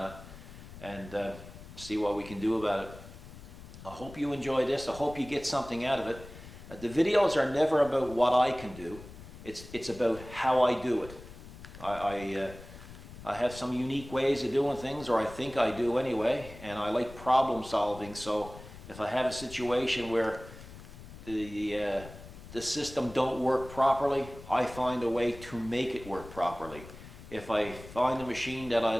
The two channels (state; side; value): noise; left; rumble, 16 dB below the sound